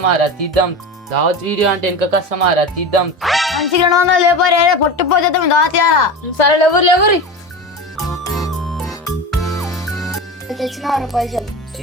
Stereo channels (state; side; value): normal; both; correlation 0.26